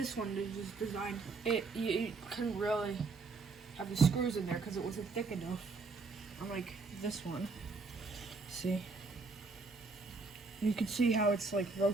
one is designed, you couldn't really have the screws in there because it wasn't thick enough. Unlike this one. See? You can see how it's like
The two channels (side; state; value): left; quieter; 4.2 dB